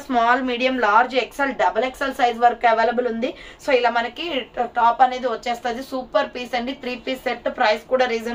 Small, medium, large, XL, double XL size వరకు అవైలబుల్ ఉంది. సో ఇలా మనకి టాప్ అనేది వచ్చేస్తుంది. సూపర్ పీస్ అండి. 3 పీస్ సెట్. ప్రైస్ కూడా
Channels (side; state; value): both; identical; correlation 1.00